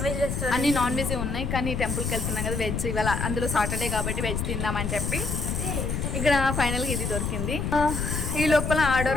వెజ్ రెస్టారెంట్, అన్ని నాన్ వెజ్ ఉన్నాయి, కానీ టెంపుల్కి వెళ్తున్నాం కదా వెజ్. ఇవాళ అందులో సాటర్డే కాబట్టి వెజ్ తిందామని చెప్పి ఇక్కడ ఫైనల్గా ఇది దొరికింది. ఈ లోపల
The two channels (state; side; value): noise; left; rumble, 2 dB below the sound